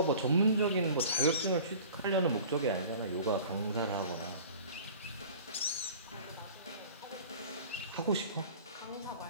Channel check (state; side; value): inverted; both; correlation -0.43